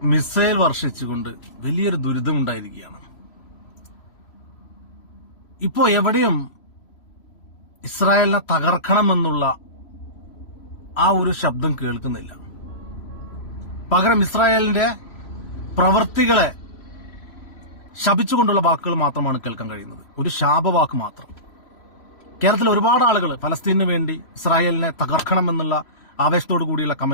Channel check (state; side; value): late; right; 3.0 ms